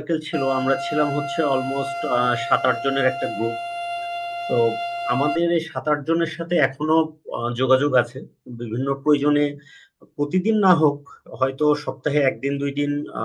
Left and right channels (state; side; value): identical; both; correlation 1.00